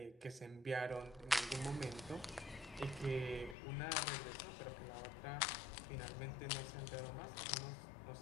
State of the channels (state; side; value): drops out; right; at 3.6 s